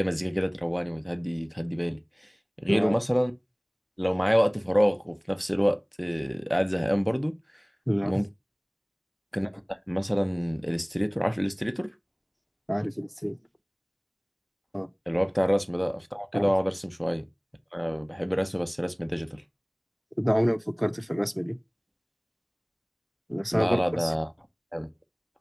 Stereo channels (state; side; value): identical; both; correlation 1.00